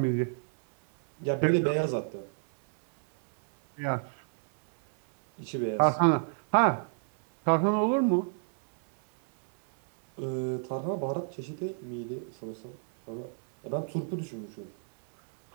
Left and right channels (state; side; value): silent; left; 58 dB below the other